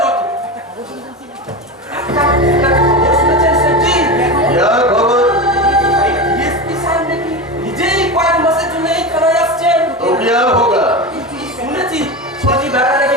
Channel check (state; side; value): normal; both; correlation 0.22